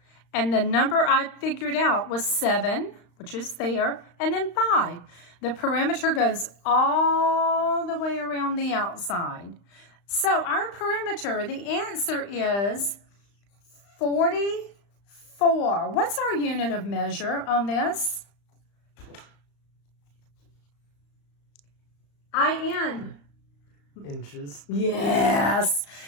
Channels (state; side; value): late; right; 35 ms